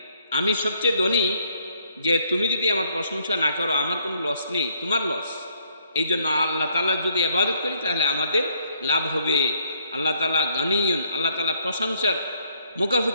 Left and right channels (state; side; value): inverted; both; correlation -0.69